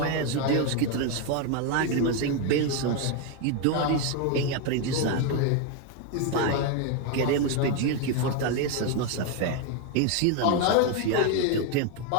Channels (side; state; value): both; different; correlation 0.01